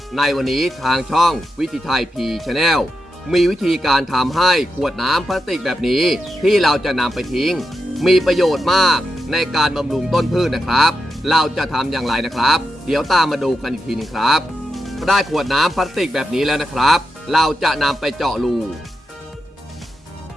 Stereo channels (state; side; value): normal; both; correlation 0.87